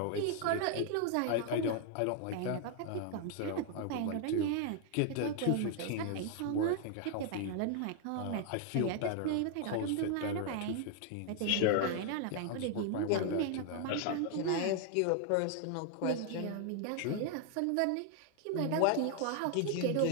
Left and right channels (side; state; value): both; different; correlation 0.00